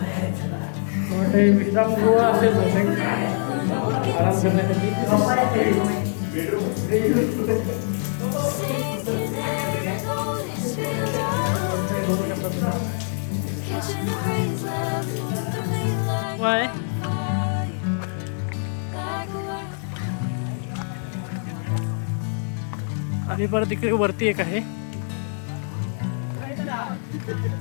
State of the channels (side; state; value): right; silent; 63 dB below the other